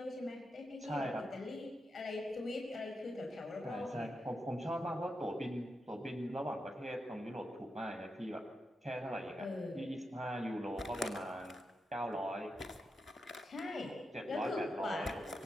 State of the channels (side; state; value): both; normal; correlation 0.86